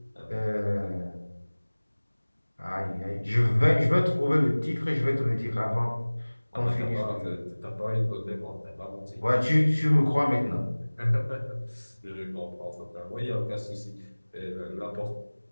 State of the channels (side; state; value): both; inverted; correlation -1.00